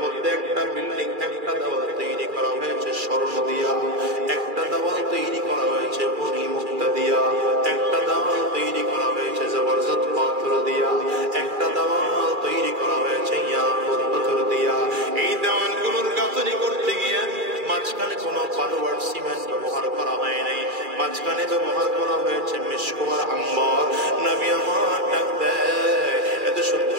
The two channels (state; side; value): late; left; 2.4 ms